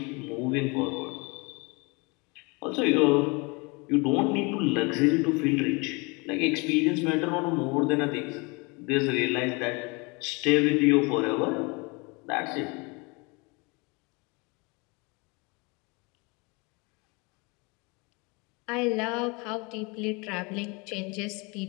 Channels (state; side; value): quieter; right; 28.7 dB